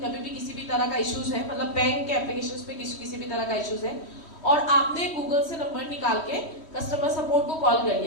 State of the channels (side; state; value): right; late; 3.1 ms